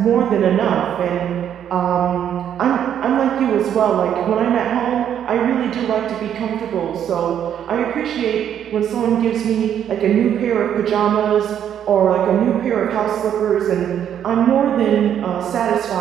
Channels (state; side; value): quieter; left; 9.5 dB